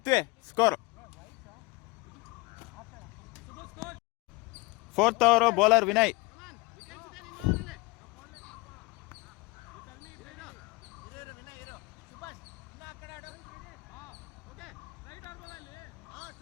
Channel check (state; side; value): quieter; right; 23.9 dB